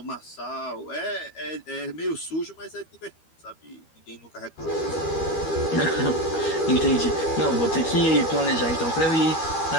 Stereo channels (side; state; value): right; late; 12 ms